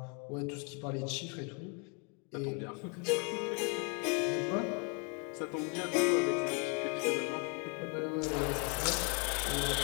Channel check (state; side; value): quieter; right; 35.6 dB